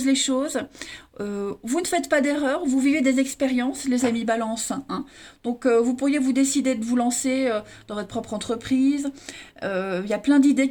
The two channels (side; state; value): both; identical; correlation 1.00